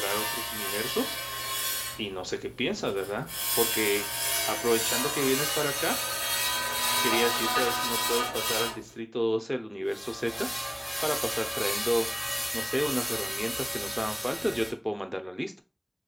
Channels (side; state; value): both; identical; correlation 1.00